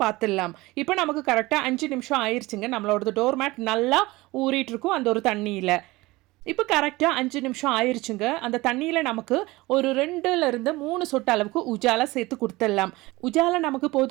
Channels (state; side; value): quieter; left; 20.7 dB